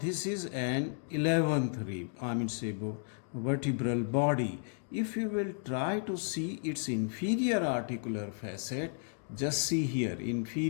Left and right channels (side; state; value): right; silent; 56 dB below the other